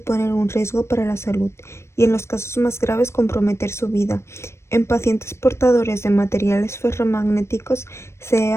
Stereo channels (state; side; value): late; right; 0.13 ms